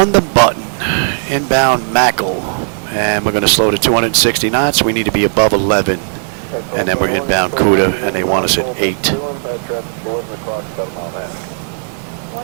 the button, inbound Mackle, and we're going to slow to 260 knots. We need to be above 11, and then we're inbound Cuda, and they want us at 8.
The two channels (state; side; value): silent; left; digital silence